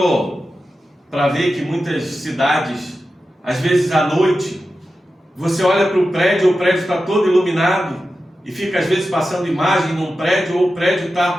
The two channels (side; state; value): both; normal; correlation 0.92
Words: para ver que muitas cidades, às vezes à noite, você olha para o prédio está todo iluminado, e fica às vezes passando imagem num prédio, ou o prédio